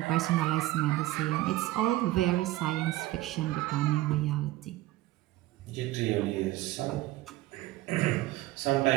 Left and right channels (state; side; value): quieter; left; 16.8 dB